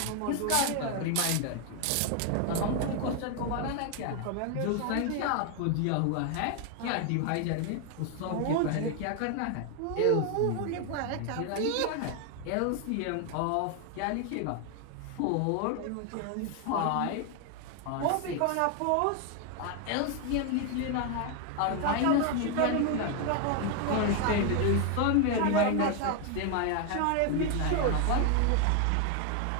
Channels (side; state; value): both; different; correlation 0.01